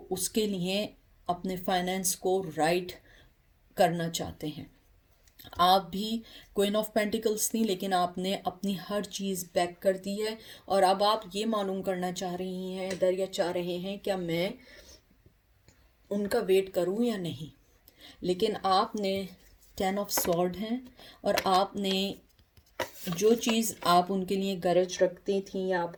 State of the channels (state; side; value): identical; both; correlation 1.00